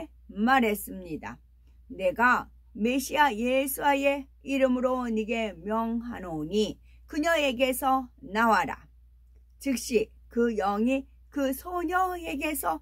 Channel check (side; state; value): both; identical; correlation 1.00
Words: 말했습니다. 내가 메시아 예수의 이름으로 네게 명하노니 그녀에게서 나와라. 즉시 그 영이 그 소녀에게서